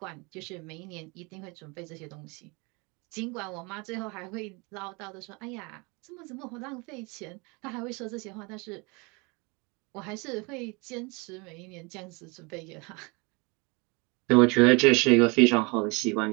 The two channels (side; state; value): left; quieter; 28.8 dB